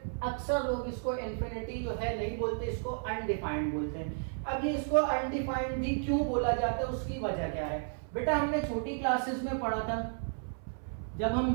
अक्सर लोग इसको इन्फिनिटी जो है नहीं बोलते, इसको अनडिफाइंड बोलते हैं। अब ये इसको अनडिफाइंड भी क्यों बोला जाता है, उसकी वजह क्या है बेटा, हमने छोटी क्लासेस में पढ़ा था जब हम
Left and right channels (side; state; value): left; silent; 56 dB below the other